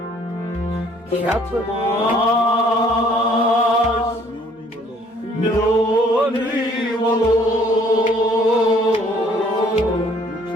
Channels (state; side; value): normal; both; correlation 0.60